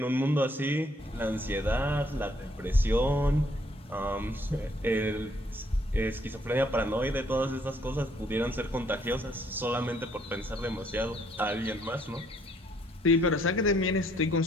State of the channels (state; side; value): normal; both; correlation 0.67